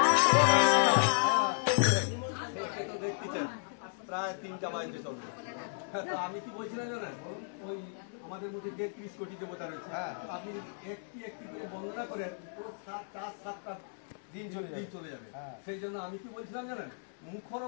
সে তো দেখতেছেন প্রায় 3টা বাজতে চলবে। তো আমি কি বলছিলাম জানেন, ওই আমাদের মধ্যে যে 30 কোটি দেবতা রয়েছে, আপনি একটি একটি করে বন্দনা করেন, পুরো 7টা দিন চলে যাবে। সেই জন্য আমি কি বলছিলাম জানেন, মুখর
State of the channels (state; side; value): silent; right; digital silence